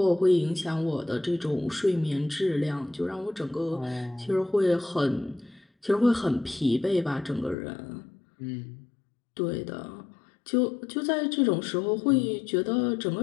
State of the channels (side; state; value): right; drops out; at 7.6 s